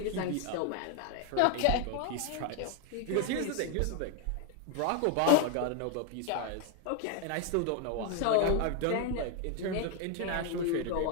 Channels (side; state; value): both; different; correlation 0.01